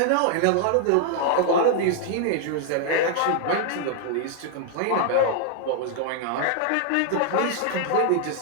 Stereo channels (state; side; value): different; both; correlation 0.00